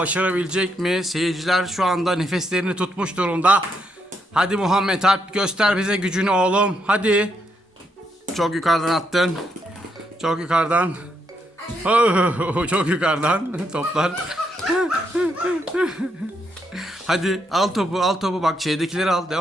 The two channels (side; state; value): both; normal; correlation 0.78